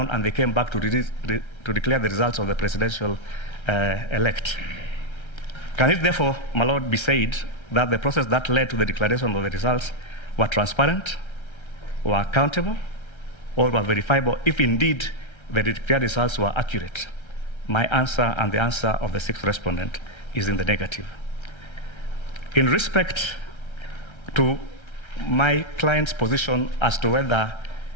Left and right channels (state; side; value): late; right; 1.3 ms